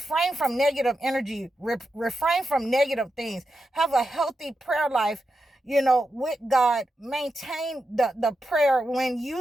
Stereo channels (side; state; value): both; normal; correlation 0.88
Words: from negative energy, refrain from negative things. Have a healthy prayer life, with God. Maintain the prayer when